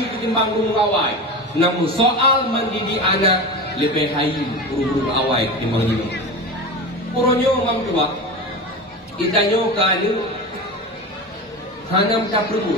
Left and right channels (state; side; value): normal; both; correlation 0.26